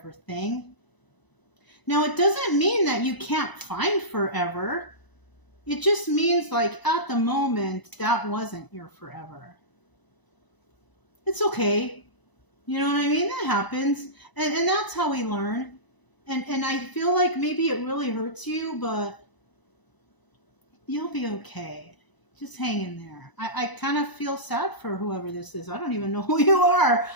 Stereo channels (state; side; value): late; right; 1.0 ms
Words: thing. Now, it doesn't mean that you can't find forever. It just means like at the moment, that wasn't your forever. It's okay. You know what I mean? That happens. And that's how we learn. And I feel like maybe it really hurts you, but you'll be okay. Just hang in there. I kind of feel sad for whoever this is. I don't even know who you are.